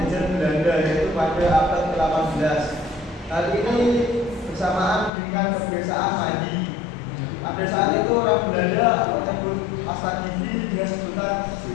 Belanda, yaitu pada abad ke-18. Hal ini bersamaan dengan kebiasaan mandi. Pada saat itu orang Belanda menyebut pasta gigi dengan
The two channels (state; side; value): drops out; right; at 5.1 s